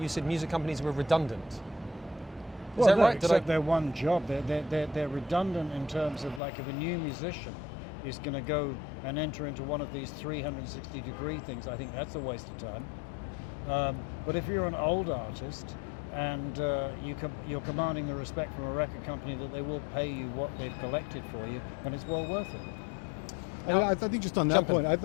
said music companies were redundant. Is that right? Except they're one job. They're redundant in terms of, like, if a new musician is going to go and enter into one of these 360-degree things, I think that's a waste of time. But if you're an old artist and you're commanding the respect from a record company that they will pay you what they've collected for you, then it's well worth it. I think just on that point, I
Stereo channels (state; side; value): drops out; right; at 6.4 s